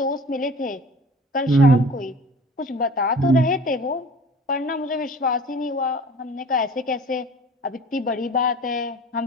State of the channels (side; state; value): both; normal; correlation 0.44